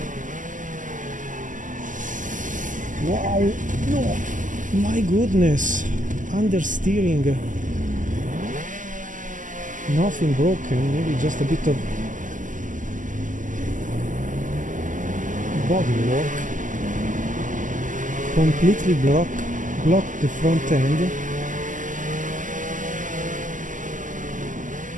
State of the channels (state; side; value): late; left; 0.37 ms